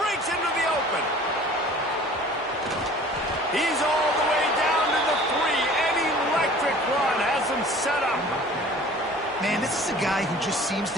into the open. He's all the way down to the 3. Run has him set up. Man, this is a guy who just seems to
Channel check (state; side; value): normal; both; correlation 0.47